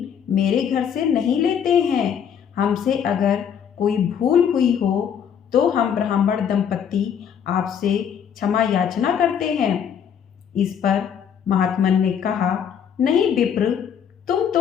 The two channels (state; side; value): quieter; right; 8.1 dB